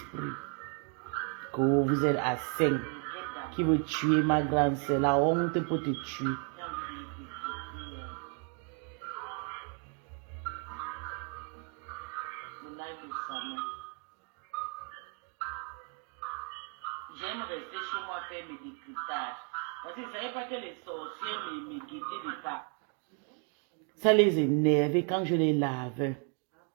Que vous êtes à 5 qui veut tuer ma grande sœur. La honte pour te tuer. J'aime rester chez moi faire mes décryptages. Parce que je ne savais pas que les sorcières me guettaient de pas. Ça les énervait quand je les lave.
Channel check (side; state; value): left; quieter; 38.1 dB